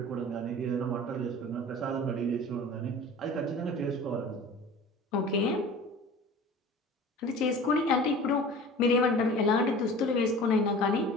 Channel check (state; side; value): normal; both; correlation 0.40